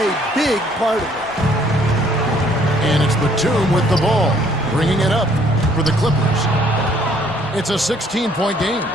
big part of it. And it's Batum with the ball, bringing it up for the Clippers. It's a 16-point game.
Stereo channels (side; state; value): both; normal; correlation 0.62